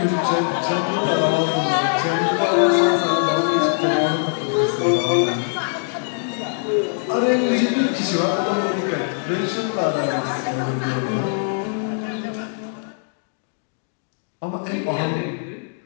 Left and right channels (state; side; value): silent; right; digital silence